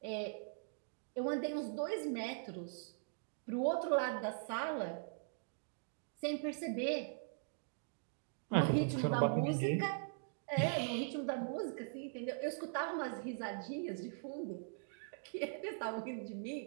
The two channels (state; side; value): silent; left; digital silence